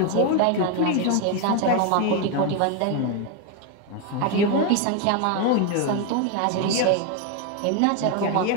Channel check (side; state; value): both; different; correlation 0.02